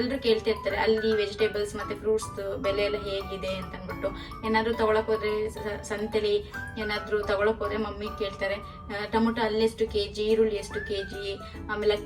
ಕೇಳ್ತಾ ಇರ್ತಾರೆ ಅಲ್ಲಿ ವೆಜಿಟೇಬಲ್ಸ್ ಮತ್ತು ಫ್ರೂಟ್ಸ್ ಬೆಲೆ ಎಲ್ಲ ಹೇಗಿದೆ ಅಂತ ಅಂದ್ಬಿಟ್ಟು. ಏನಾದರೂ ತೊಗೊಳಕ್ಕೆ ಹೋದರೆ, ಸಂತೆಲಿ ಏನಾದರೂ ತೊಗೊಳಕ್ಕೆ ಹೋದರೆ ಮಮ್ಮಿ ಕೇಳ್ತಾರೆ ಟೊಮೊಟೊ ಅಲ್ಲೆಷ್ಟು ಕೆಜಿ, ಈರುಳ್ಳಿ ಎಷ್ಟು ಕೆಜಿ, ಆಮೇಲೆ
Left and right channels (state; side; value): identical; both; correlation 1.00